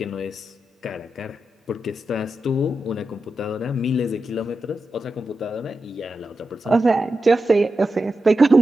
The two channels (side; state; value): both; normal; correlation 0.90